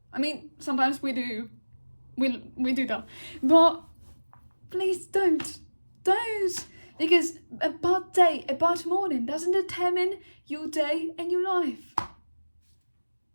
I mean, sometimes we do. We do that. But please don't. Don't. Because a bad day, a bad morning doesn't determine your day and your life.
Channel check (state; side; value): inverted; both; correlation -1.00